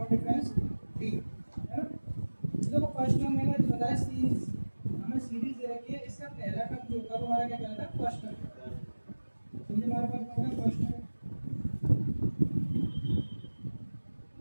difference D, है ना। देखो फर्स्ट टर्म मैंने बताया सीरीज, हमें सीरीज दे रखी है, इसका पहला टर्म जो होगा वो हमारा क्या कहलाता है फर्स्ट टर्म। तो ये हमारे पास होगा फर्स्ट टर्म,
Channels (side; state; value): both; inverted; correlation -1.00